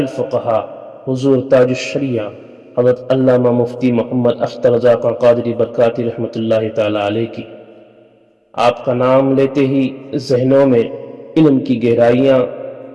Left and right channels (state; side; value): identical; both; correlation 1.00